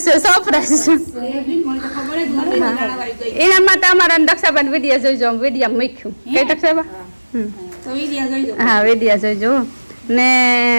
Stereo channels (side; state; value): both; inverted; correlation -1.00